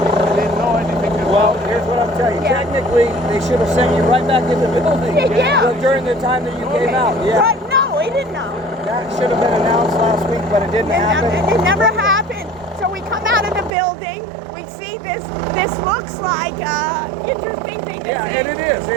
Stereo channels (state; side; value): drops out; left; at 13.7 s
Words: didn't know anything Well, about here's it. what I'm telling you. Yeah. Technically, they should have sent you right back in the building Yeah. during the time that you came out. Yeah, But no, he didn't know. that should have been announced last week, but it didn't happen. It never happened. So we come out of the building, we see this looks like interesting thing to Yeah, see. and it is.